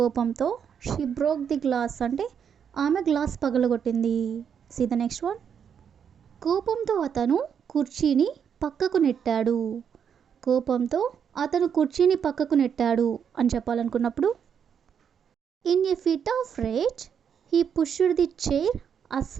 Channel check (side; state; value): left; quieter; 7.7 dB